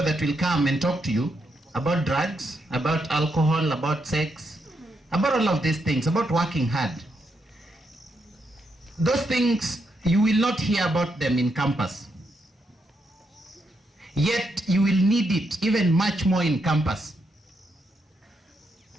that will come and talk to you about drugs, about alcohol, about sex, about all of these things, about working hard. Those things, you will not hear about them in campus. Yet you will need it even much more in campus.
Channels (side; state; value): both; normal; correlation 0.80